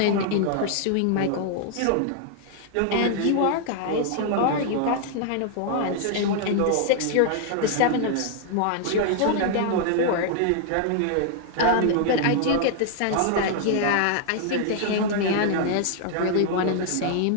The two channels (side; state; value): both; different; correlation 0.00